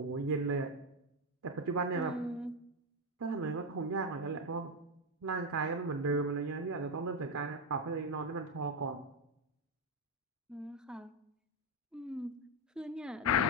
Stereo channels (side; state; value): both; normal; correlation 0.07